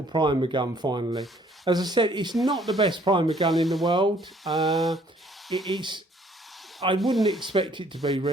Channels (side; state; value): both; normal; correlation 0.61